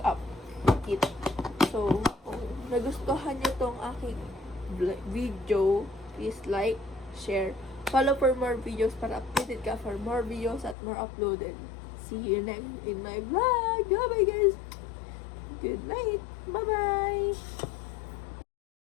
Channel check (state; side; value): drops out; right; at 10.8 s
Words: kit. So, kung nagustuhan nyo tong aking video, please like, share, follow for more videos para updated ka for more videos at more uploaded. See you next in my vlog. Bye-bye, guys. Good night. Bye-bye.